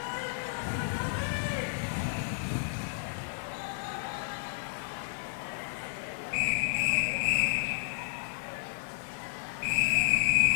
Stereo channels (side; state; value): right; silent; 56 dB below the other